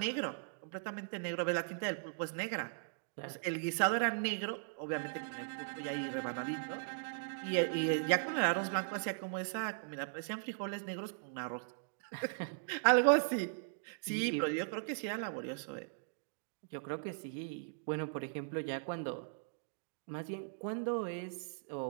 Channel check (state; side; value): silent; left; digital silence